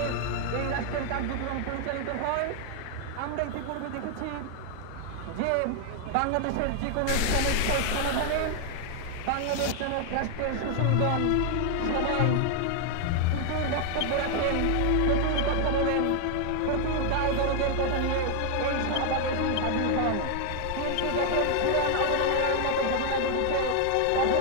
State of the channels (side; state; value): both; different; correlation 0.00